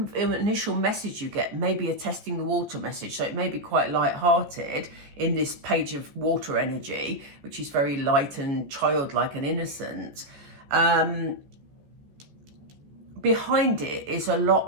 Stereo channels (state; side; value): late; left; 14 ms